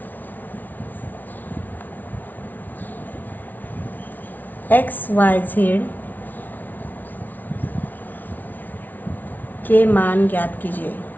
XYZ के मान ज्ञात कीजिए।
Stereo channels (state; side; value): late; right; 0.082 ms